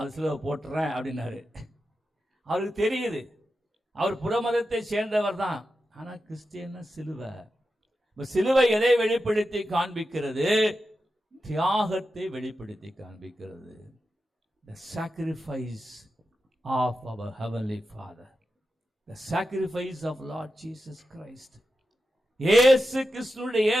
சிலுவை போட்டுறேன் அப்படின்னாரு. அவருக்கு தெரியுது, அவர் புறமதத்தை சேர்ந்தவர் தான், ஆனால் கிறிஸ்டியன்னா சிலுவை. இப்போ சிலுவை எதை வெளிப்படுத்தி காண்பிக்கிறது? தியாகத்தை வெளிப்படுத்தி காண்பிக்கிறது. The sacrifice of our heavenly Father, the sacrifice of Lord Jesus Christ. இயேசு கிறிஸ்துவினுடைய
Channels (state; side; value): normal; both; correlation 0.90